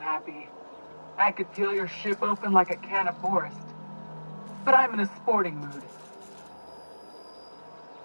I could peel your ship open like a can of forest. But I'm in a sporting mood.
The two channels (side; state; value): both; inverted; correlation -1.00